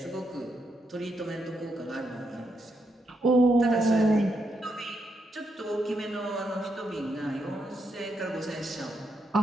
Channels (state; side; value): normal; both; correlation 0.80